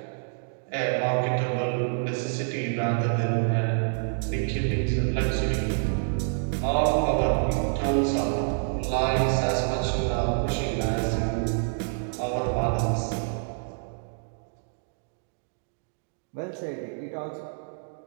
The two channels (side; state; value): left; silent; digital silence